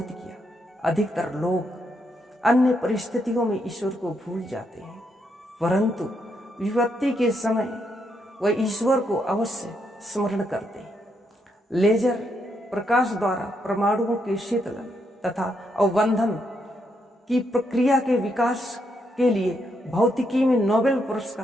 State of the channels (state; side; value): normal; both; correlation 0.78